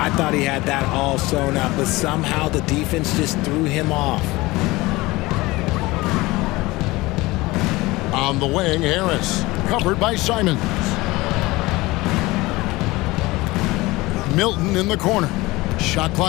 thought he had that all sewn up, but somehow the defense just threw him off. On the wing, Harris. Covered by Simons. Milton in the corner. Shot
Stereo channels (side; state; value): right; quieter; 20.8 dB